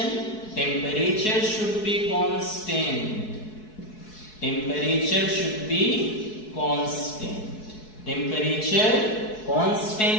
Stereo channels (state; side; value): late; right; 4.7 ms